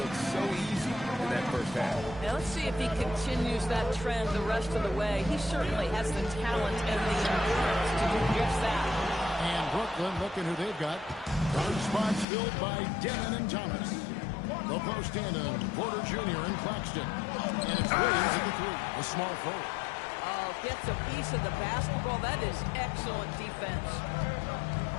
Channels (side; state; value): right; drops out; at 12.2 s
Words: so easy in that first half. Now let's see if he continues that trend the rest of the way. He certainly has the talent and the endurance to do just that. And Brooklyn, looking who they've got. Guard spots filled by Demon and Thomas. The post in Porter Jr. and Claxton. And it's Williams at the 3. A small forward. Oh, gets a piece of the basketball. That is excellent defense.